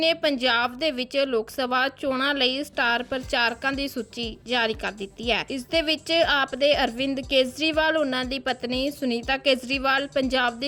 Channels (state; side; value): identical; both; correlation 1.00